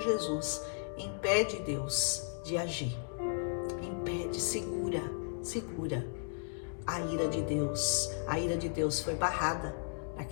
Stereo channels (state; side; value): silent; right; digital silence